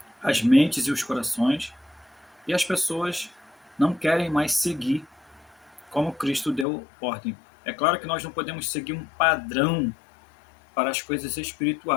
as mentes e os corações, e as pessoas não querem mais seguir como Cristo deu ordem. É claro que nós não podemos seguir um padrão para as coisas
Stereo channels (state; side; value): drops out; right; at 6.7 s